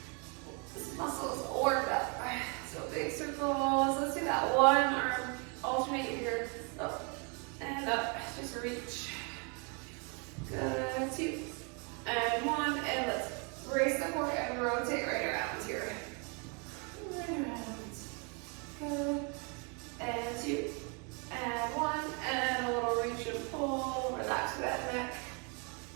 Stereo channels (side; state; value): left; quieter; 34.8 dB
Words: This muscle is warmed up. So big circles. Let's do that. One arm alternate here. Up and up. Just reach. Good. Two. And one. And let's brace the core and rotate right around here. Right around. Good. And two. And one. And a little reach and pull. Relax that neck.